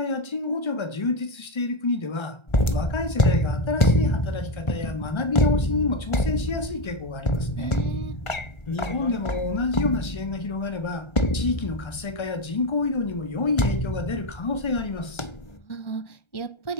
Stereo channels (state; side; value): late; right; 1.3 ms